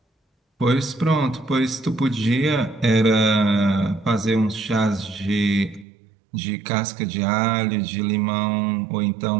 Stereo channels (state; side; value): drops out; left; at 5.9 s